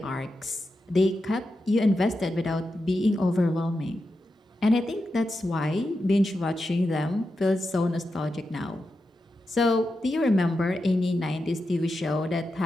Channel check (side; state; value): both; normal; correlation 0.89